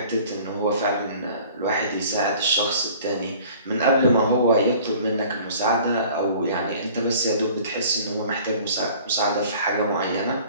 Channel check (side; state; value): both; inverted; correlation -0.49